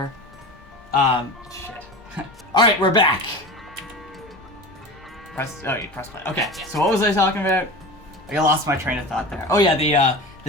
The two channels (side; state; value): both; normal; correlation 0.32